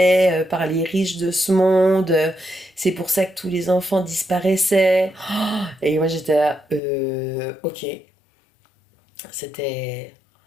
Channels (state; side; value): drops out; right; at 6.8 s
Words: par les riches de ce monde. C'est pour ça que tous les enfants disparaissaient. Et moi, j'étais là, ok. C'était...